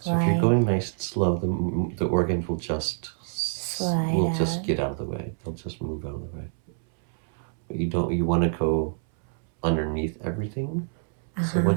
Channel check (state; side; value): silent; left; 61 dB below the other